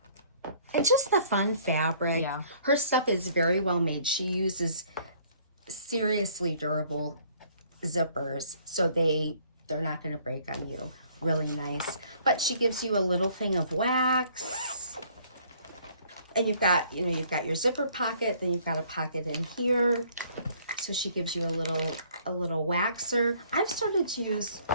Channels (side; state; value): both; inverted; correlation -0.60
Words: And just the fun fabric. Yeah. Her stuff is very well made. She uses seriously durable zippers, so they're not going to break on you. Really nice. But she gives you a little thing of wax, and you've got your zipper pocket, then you've got a pocket in here. So she gives you a little waxer. I've started to use